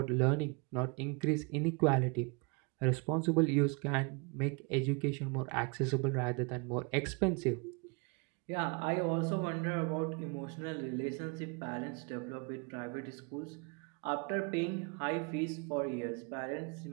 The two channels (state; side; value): quieter; left; 32.4 dB